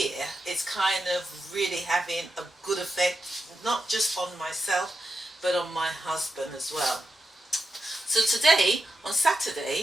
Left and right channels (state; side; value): normal; both; correlation 0.88